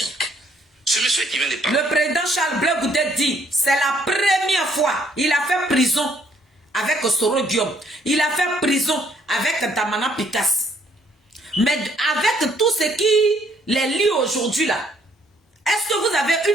Ce monsieur qui vient de parler. Le président Charles Blé Goudé dit, c'est la première fois, il a fait prison avec Soro Guillaume, il a fait prison avec Damana Picasse. Mais avec tout ce qui les lie aujourd'hui là, est-ce que vous avez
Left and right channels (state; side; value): normal; both; correlation 0.66